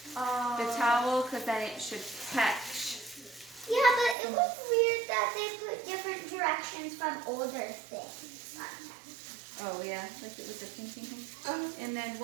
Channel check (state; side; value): drops out; left; at 4.2 s